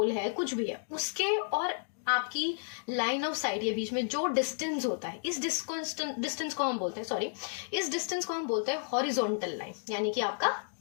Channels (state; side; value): silent; right; digital silence